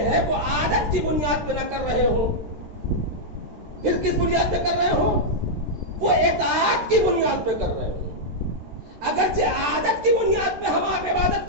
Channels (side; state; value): left; late; 13 ms